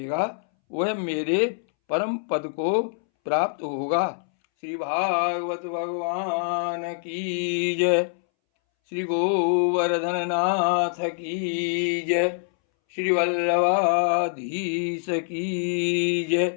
वह मेरे परम पद को प्राप्त होगा। श्री भागवत भगवान की जय। श्री गोवर्धन नाथ की जय। श्री वल्लभाधीश की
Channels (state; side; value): silent; right; 62 dB below the other